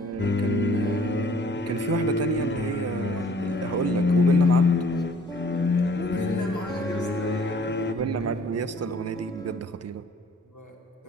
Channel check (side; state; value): both; normal; correlation 0.56